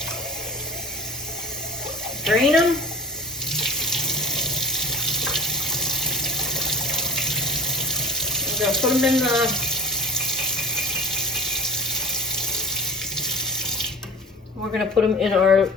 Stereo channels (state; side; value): normal; both; correlation 0.41